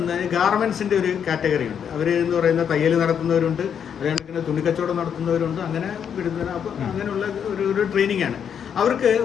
ഗാർമെൻസിൻ്റെ ഒരു കാറ്റഗറി ഉണ്ട്. അവർ എന്ന് പറയുന്ന തയ്യൽ നടത്തുന്നവരുണ്ട്, അതുകണക്കിന് തുണിക്കച്ചവടം നടത്തുന്നവരുണ്ട്. അങ്ങനെ വിടുന്ന അപ്പോൾ അങ്ങനെയുള്ള ഒരു ട്രെയിനിങ് ആണ്. അവർക്ക്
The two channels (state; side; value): quieter; right; 8.0 dB